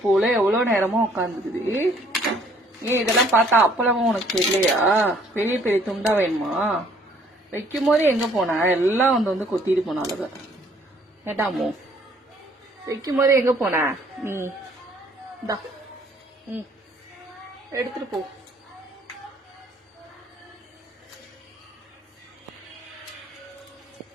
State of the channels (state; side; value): normal; both; correlation 0.61